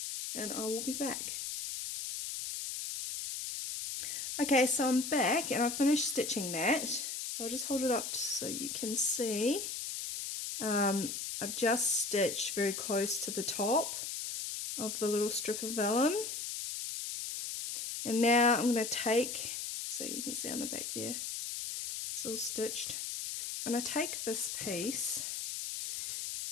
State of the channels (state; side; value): noise; left; hiss, 5 dB below the sound